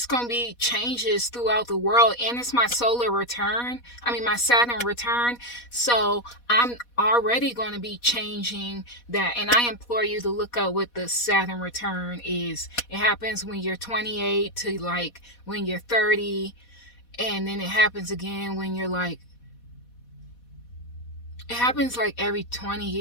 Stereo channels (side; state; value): right; late; 4.1 ms